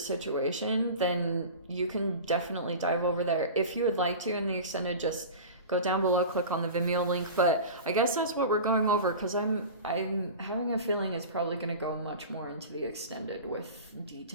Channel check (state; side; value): inverted; both; correlation -0.33